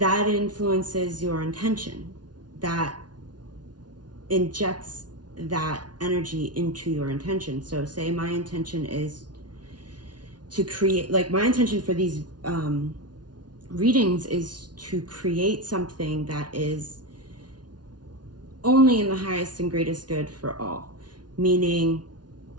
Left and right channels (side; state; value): left; late; 0.69 ms